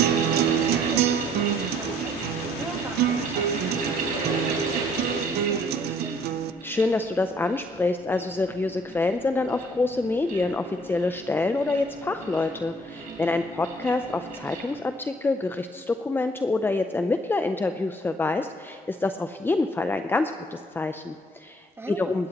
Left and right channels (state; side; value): normal; both; correlation 0.61